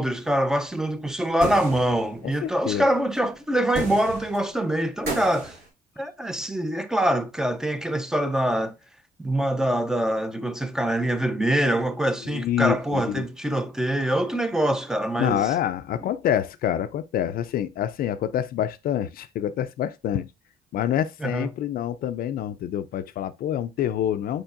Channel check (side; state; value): both; normal; correlation 0.69